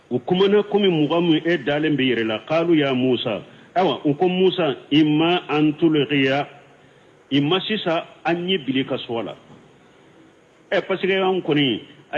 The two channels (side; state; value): both; identical; correlation 1.00